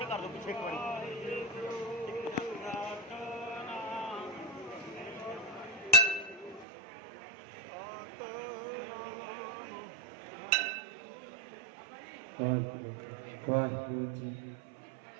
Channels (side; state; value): left; drops out; at 6.7 s